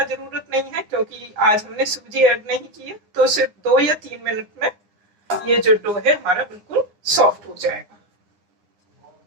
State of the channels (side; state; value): left; late; 9.7 ms